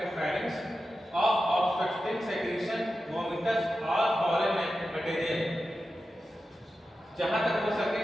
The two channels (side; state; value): both; normal; correlation 0.92